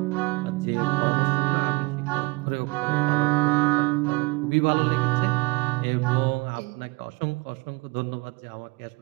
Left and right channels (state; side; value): quieter; left; 24.8 dB